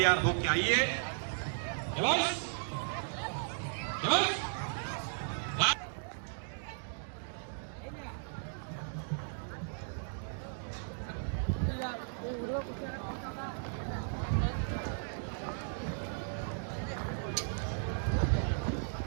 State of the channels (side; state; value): left; silent; digital silence